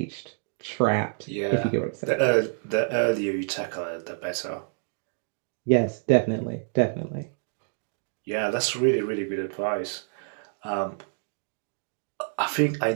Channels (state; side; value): silent; left; 60 dB below the other